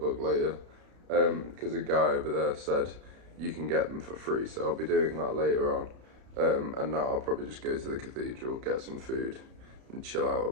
later because a guy over there said you can get them for free. So I'll be doing that later on. And now I'll probably just go to the cathedral, get some food and chill out a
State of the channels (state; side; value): late; left; 33 ms